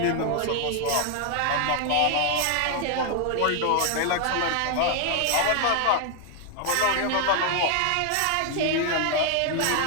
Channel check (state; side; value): different; both; correlation 0.00